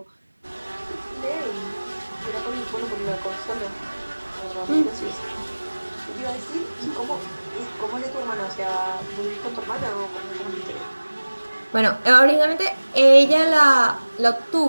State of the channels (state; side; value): inverted; both; correlation -1.00